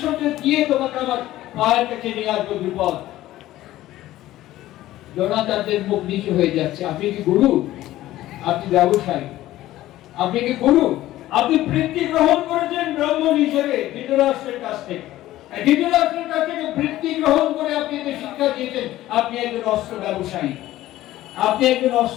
দিয়ে তোমাকে আমার পায়ের কাছে নিয়ে আসবো দ্রুপদ। দ্রোণাচার্যের মুখ নিচু হয়ে যাচ্ছে। আপনি কি গুরু? আপনি ব্যবসায়ী। আপনি কি গুরু? আপনি বৃত্তি গ্রহণ করেছেন ব্রাহ্মণ হিসেবে ধৃতরাষ্ট্রের কাছ থেকে। ধৃতরাষ্ট্রের কাছ থেকে বৃত্তি গ্রহণ করে আপনি একে শিক্ষা দিয়েছেন। আপনি একজন অস্ত্র ব্যবসায়ী, আপনি একজন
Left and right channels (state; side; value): quieter; right; 15.1 dB